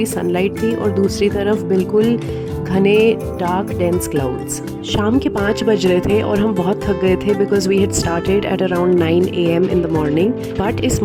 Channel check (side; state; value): both; identical; correlation 1.00